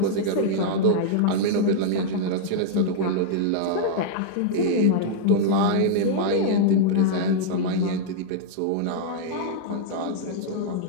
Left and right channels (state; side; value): different; both; correlation -0.01